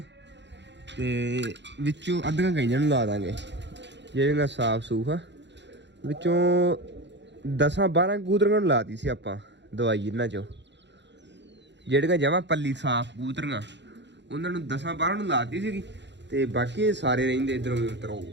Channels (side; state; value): left; late; 0.52 ms